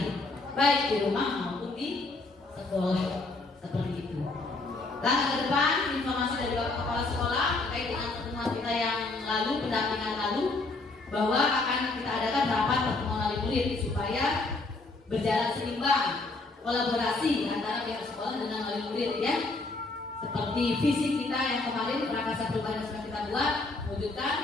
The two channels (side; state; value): right; quieter; 3.4 dB